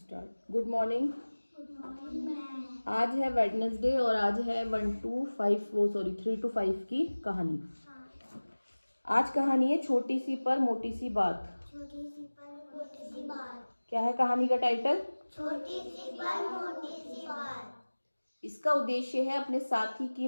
स्टार्ट। Good morning. आज है वेडनेसडे और आज है 3 to 5 की कहानी। आज कहानी है छोटी सी पर मोटी सी बात। छोटी सी पर मोटी सी बात। क्या है कहानी का टाइटल? छोटी सी पर मोटी सी बात। इसका उद्देश्य है अपने साथी की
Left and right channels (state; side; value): inverted; both; correlation -1.00